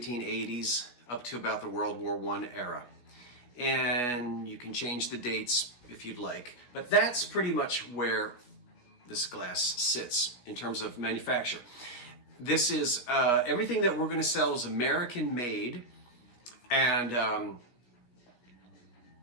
up to about the World War I era. And you can change the dates if you'd like. But that's pretty much where this glass sits in terms of manufacture. This is, everything that we're going to sell is American made, and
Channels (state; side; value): late; right; 17 ms